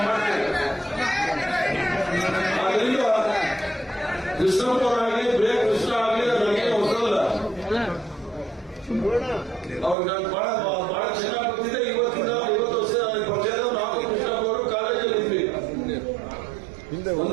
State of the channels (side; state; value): left; drops out; at 10.0 s